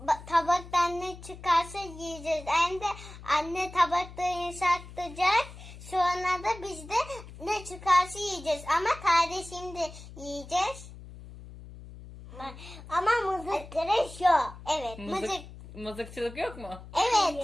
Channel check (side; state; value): left; noise; hum, 15 dB below the sound